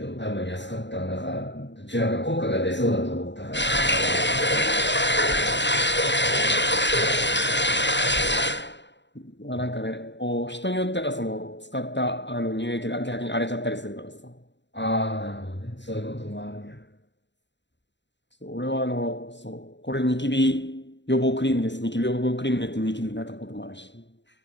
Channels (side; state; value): right; late; 0.52 ms